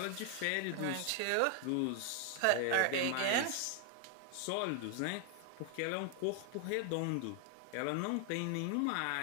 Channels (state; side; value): different; both; correlation 0.00